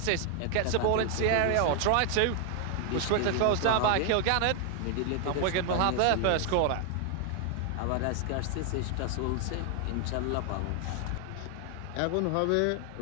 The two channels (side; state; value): both; different; correlation 0.00